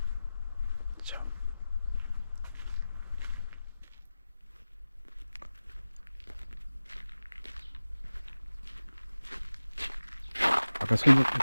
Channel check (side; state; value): both; inverted; correlation -0.96